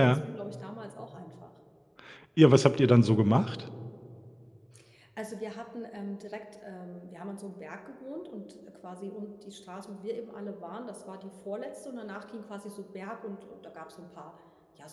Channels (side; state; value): both; identical; correlation 1.00